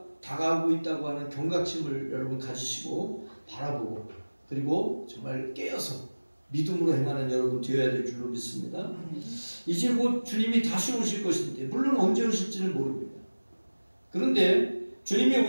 다가오고 있다고 하는 경각심을 여러분 가지시고 바라보고 그리고 정말 깨어서 믿음으로 행하는 여러분 되어야 될 줄로 믿습니다. 이제 곧 주님이 다시 오실 것인데 물론 언제 오실지는 모릅니다. 그런데 주님이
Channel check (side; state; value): both; inverted; correlation -1.00